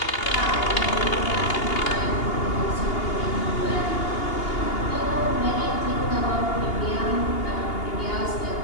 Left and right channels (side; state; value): right; late; 2.8 ms